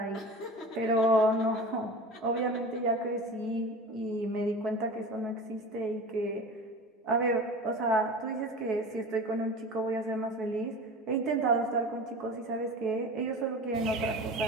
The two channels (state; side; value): normal; both; correlation 0.35